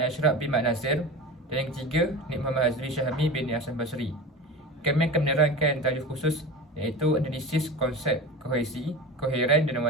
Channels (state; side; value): normal; both; correlation 0.31